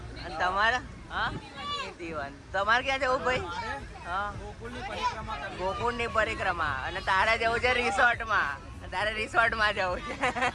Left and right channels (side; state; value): both; identical; correlation 1.00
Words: અને તમારે? હા, તમારે ક્યાં જવું ભાઈ? હા, ગોકુળની પરિક્રમા. અને તારે જવું છે રિસોર્ટમાં. તારે રિસોર્ટમાં જવું છે.